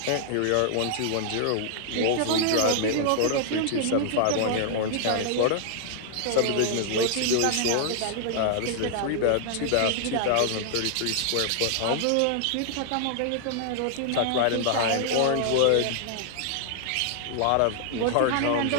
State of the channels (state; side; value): different; both; correlation -0.01